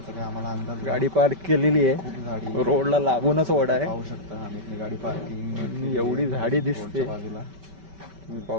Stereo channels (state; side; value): late; left; 5.2 ms